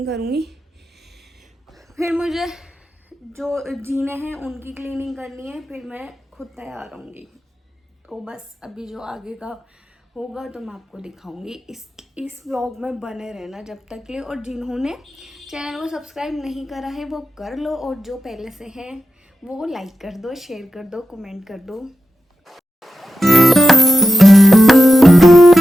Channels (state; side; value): normal; both; correlation 0.89